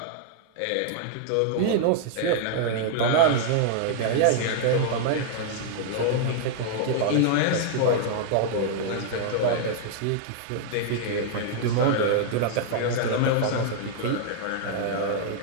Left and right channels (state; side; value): different; both; correlation -0.01